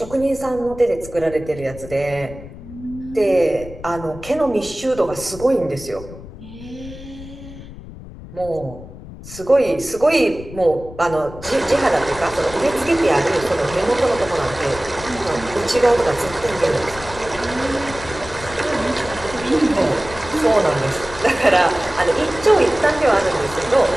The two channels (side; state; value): left; noise; rumble, 15 dB below the sound